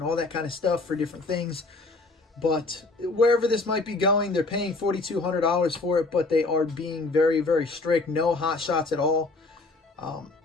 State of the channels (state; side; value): quieter; right; 3.4 dB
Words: all that kind of stuff for different things. But wherever this might be going, they're paying $4,200 for it, but they are being very, very strict. No hot shots at all.